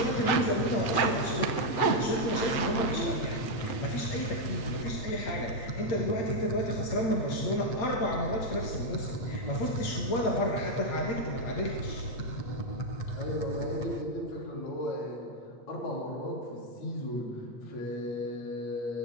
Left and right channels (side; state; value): right; late; 8.6 ms